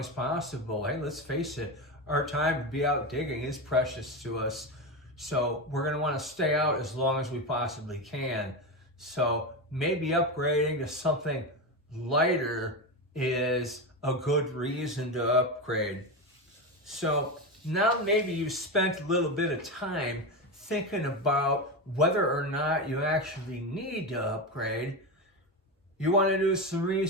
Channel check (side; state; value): both; normal; correlation 0.17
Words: possible. Hey, let's face it, our time to be out digging is precious to us. So we're going to want to stay out as long as we possibly can. So maybe upgrading to something lighter is a good reason to upgrade. So now maybe you've spent a little bit of time thinking about whether or not you actually need to upgrade. You want to do some